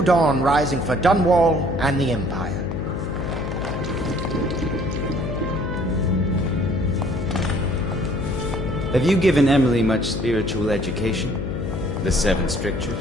dawn rising for Dunwall and the Empire. Have you given Emily much spiritual education? The Seven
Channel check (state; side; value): noise; left; hum, 4 dB below the sound